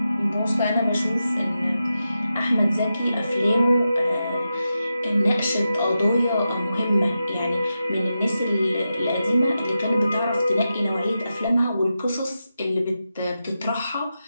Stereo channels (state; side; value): inverted; both; correlation -0.89